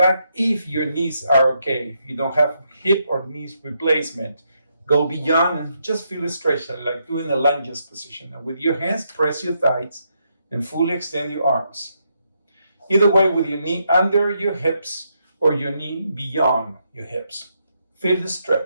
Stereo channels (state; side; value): inverted; both; correlation -0.79